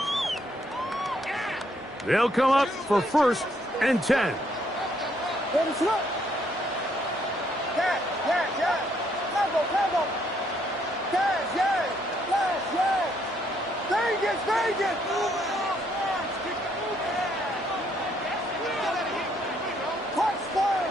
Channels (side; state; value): both; normal; correlation 0.70